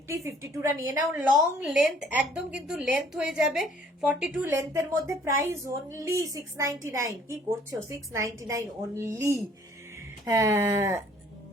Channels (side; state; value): both; normal; correlation 0.58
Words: 52 রা নিয়ে নাও। লং লেন্থ একদম কিন্তু লেন্থ হয়ে যাবে 42 লেন্থের মধ্যে, প্রাইস অনলি 699। কি করছো, 699 অনলি। হ্যাঁ